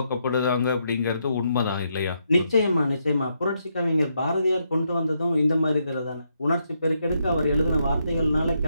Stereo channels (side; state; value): both; inverted; correlation -0.79